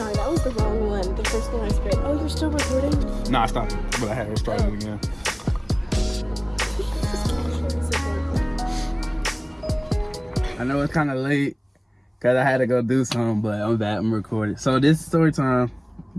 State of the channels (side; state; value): both; identical; correlation 1.00